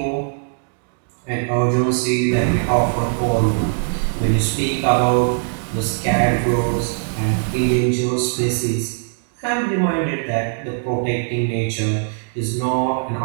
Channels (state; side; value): silent; left; digital silence